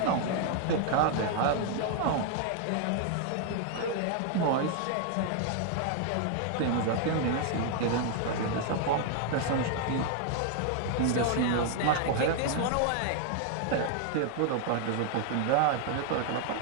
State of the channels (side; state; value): both; different; correlation 0.00